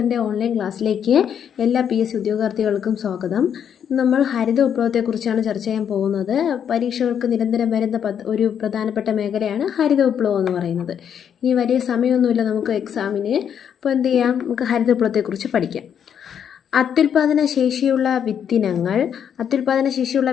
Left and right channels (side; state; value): right; quieter; 8.4 dB